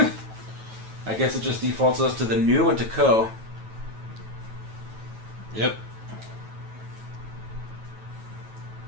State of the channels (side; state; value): left; late; 9.2 ms